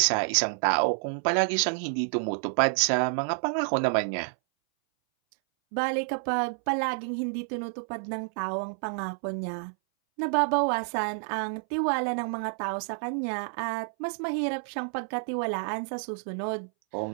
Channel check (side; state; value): left; silent; 59 dB below the other